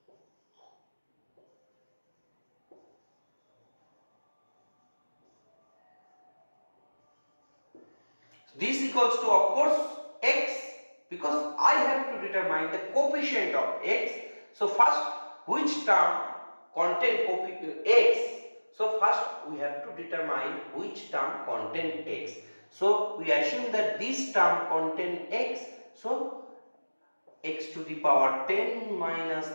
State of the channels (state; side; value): inverted; both; correlation -1.00